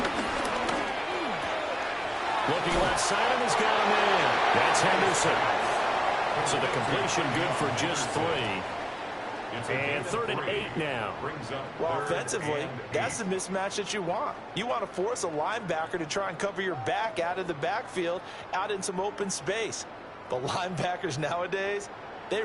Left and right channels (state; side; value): identical; both; correlation 1.00